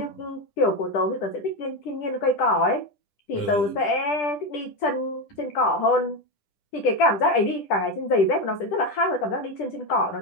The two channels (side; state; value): right; late; 10 ms